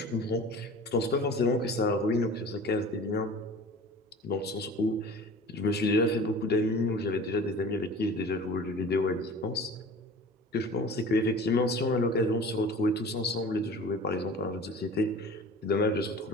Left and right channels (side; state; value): both; normal; correlation 0.41